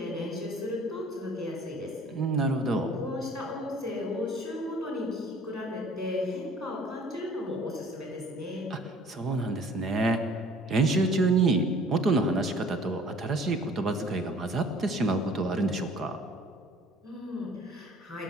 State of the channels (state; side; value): normal; both; correlation 0.52